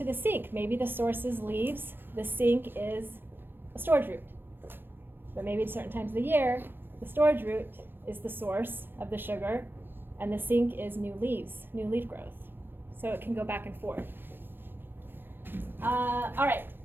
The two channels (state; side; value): late; left; 0.097 ms